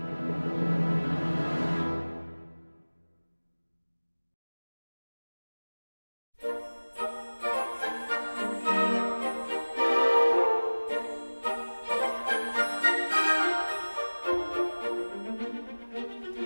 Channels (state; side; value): inverted; both; correlation -1.00